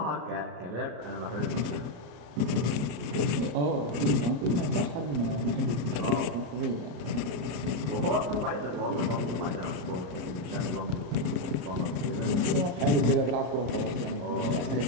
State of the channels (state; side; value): late; left; 33 ms